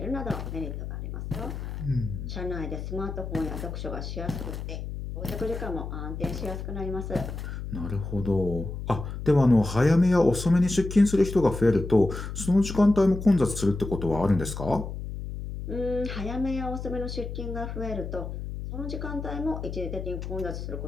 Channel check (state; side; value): noise; left; hum, 7 dB below the sound